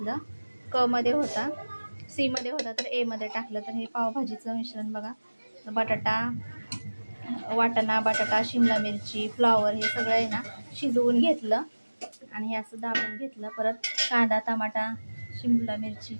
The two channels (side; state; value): both; inverted; correlation -1.00